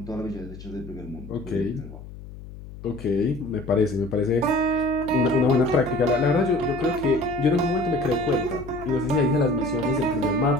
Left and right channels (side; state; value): left; noise; hum, 14 dB below the sound